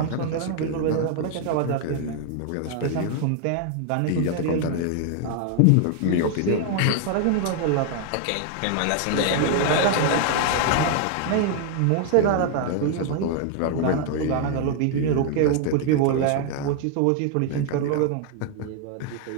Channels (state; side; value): different; both; correlation 0.00